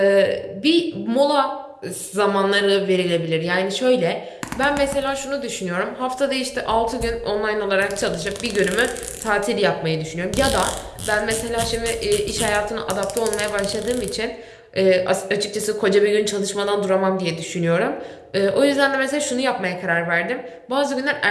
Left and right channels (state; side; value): identical; both; correlation 1.00